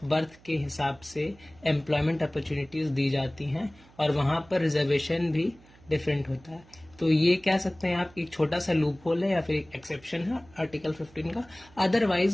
बर्थ के हिसाब से एम्प्लॉयमेंट अपॉर्चुनिटीज दी जाती हैं और वहां पर रिजर्वेशन भी डिफरेंट होता है। तो ये कह सकते हैं आप एक छोटा सा लूप होल है या फिर एक एक्सेप्शन है आर्टिकल 15 का।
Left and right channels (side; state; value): right; noise; hum, 26 dB below the sound